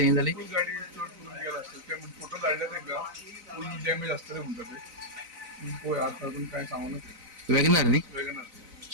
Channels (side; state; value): left; late; 4.0 ms